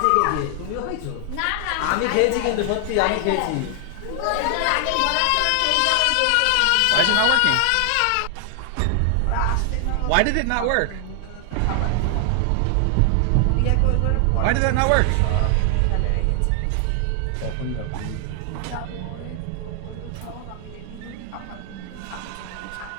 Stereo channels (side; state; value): both; different; correlation 0.00